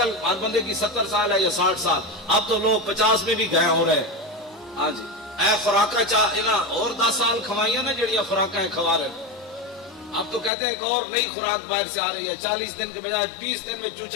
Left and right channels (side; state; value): right; drops out; at 10.5 s